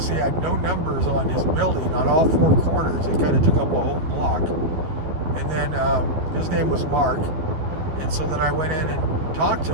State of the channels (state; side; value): late; left; 12 ms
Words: he had no numbers on his building on all four corners. It kind of took up a whole block. And then his name was Mark. And so then I went in and talked